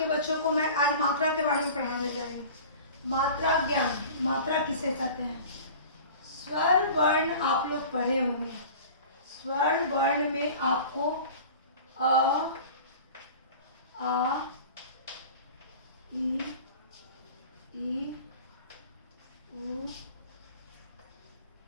बच्चों को मैं आज मात्रा के बारे में पढ़ाने जा रही हूँ। मात्रा ज्ञान, मात्रा किसे कहते हैं। स्वर वर्ण आप लोग पढ़े होंगे। स्वर वर्ण में आपको अ, आ, ई, उ,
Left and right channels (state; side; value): inverted; both; correlation -0.40